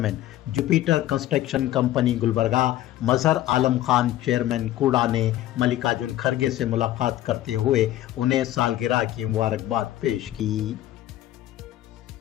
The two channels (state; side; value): quieter; right; 14.1 dB